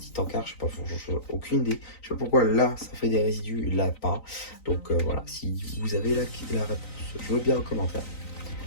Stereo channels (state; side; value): late; right; 3.9 ms